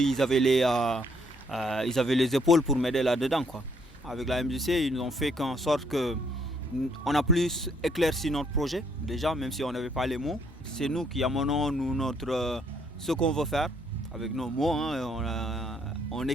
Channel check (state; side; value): normal; both; correlation 0.69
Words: ils avaient les épaules pour m'aider là-dedans, quoi. Avec la MJC, ils nous ont fait en sorte qu'on a plus éclairci notre projet, déjà, même si on n'avait pas les mots. C'est nous qui amenons ce qu'on veut faire, avec nos mots, hein, on